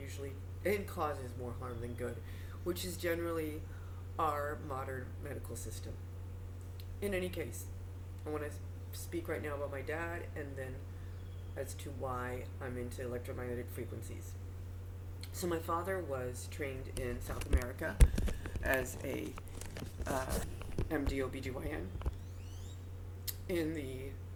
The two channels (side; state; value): both; identical; correlation 1.00